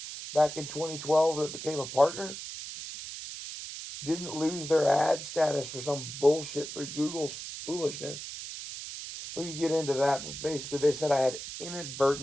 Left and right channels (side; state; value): right; noise; hiss, 9 dB below the sound